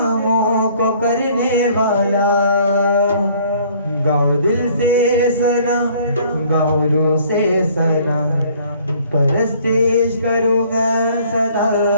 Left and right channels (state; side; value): inverted; both; correlation -0.57